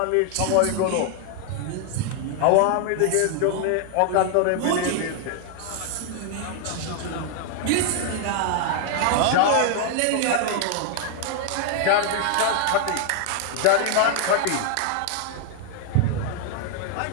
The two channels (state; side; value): different; both; correlation 0.00